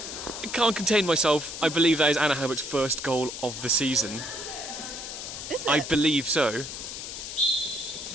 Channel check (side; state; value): left; noise; hiss, 8 dB below the sound